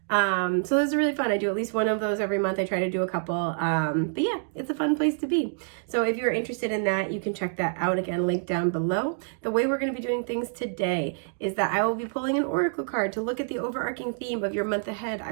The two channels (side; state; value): left; silent; digital silence